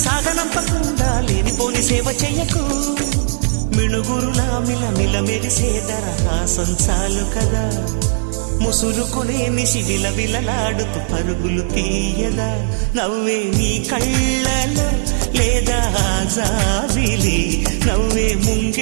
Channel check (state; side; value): silent; left; digital silence